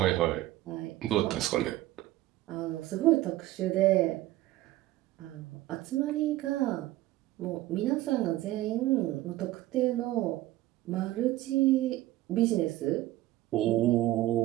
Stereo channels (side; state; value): left; quieter; 16.1 dB